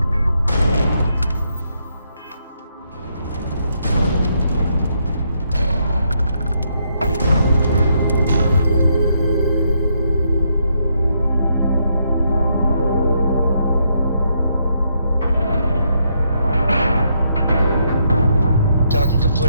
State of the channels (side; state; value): both; inverted; correlation -0.76